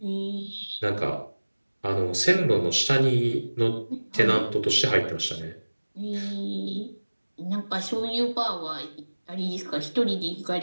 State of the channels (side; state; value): both; inverted; correlation -1.00